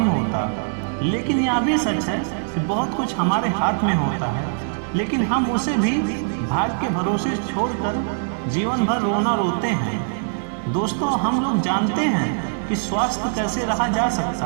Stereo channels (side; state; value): left; silent; digital silence